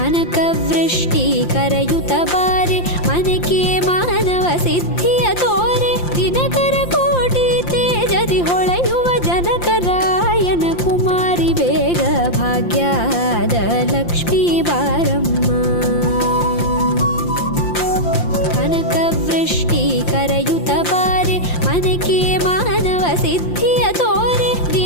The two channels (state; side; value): late; right; 5.8 ms